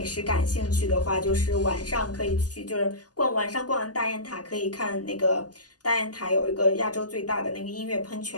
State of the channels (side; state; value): right; late; 0.68 ms